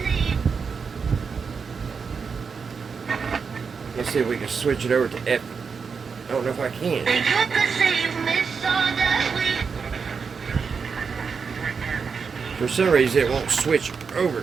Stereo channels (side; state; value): left; quieter; 5.6 dB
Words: Let's see if we can switch it over to F. I don't know if I can. For some reason it won't switch over.